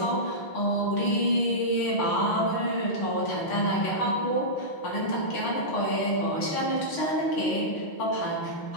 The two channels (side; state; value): right; late; 6.6 ms